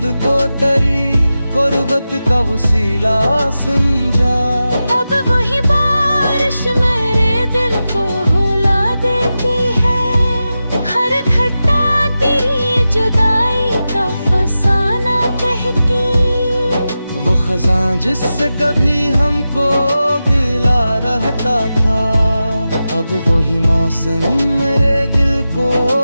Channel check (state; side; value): inverted; both; correlation -0.93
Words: को तेरी गुर्बत का वसीला समझा। अब वही बारिश मेरे दिल को रुला देती है, हर घटा तेरी जुदाई का फसाना कहती। वो खजां जिससे कभी हमको गिला रहता था, अब वही मौसम मेरे दिल को